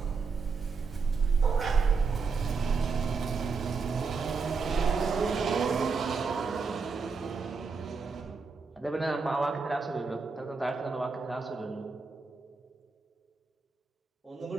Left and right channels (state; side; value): quieter; left; 4.8 dB